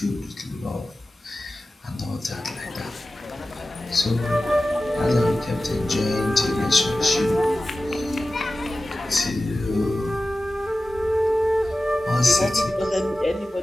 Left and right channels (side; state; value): both; normal; correlation 0.95